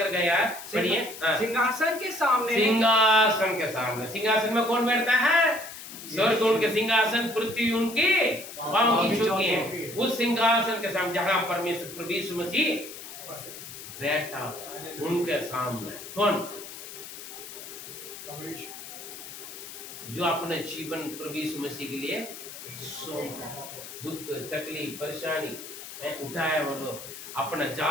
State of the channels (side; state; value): left; noise; hiss, 12 dB below the sound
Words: गया, पढ़िए। सिंहासन के सामने, सिंहासन के सामने। सिंहासन में कौन बैठता है? स्वर्ग उनके सिंहासन, पृथ्वी उनके पांव की चौकी है। उस सिंहासन के सामने जहां परमेश्वर प्रभु यीशु मसीह बैठा, उनके सामने कौन? जो अपने जीवन प्रभु यीशु मसीह के लिए दुख, तकलीफ, परेशानी उठाया वो लोग। अपना